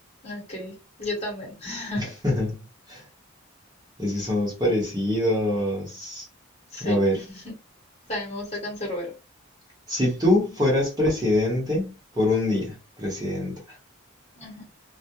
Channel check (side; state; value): both; normal; correlation 0.59